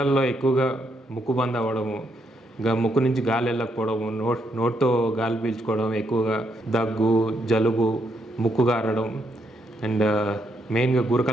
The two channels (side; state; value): both; normal; correlation 0.77